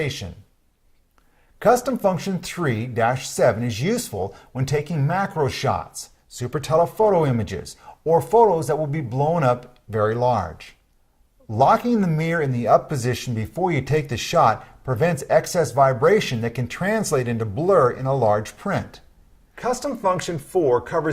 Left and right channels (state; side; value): identical; both; correlation 1.00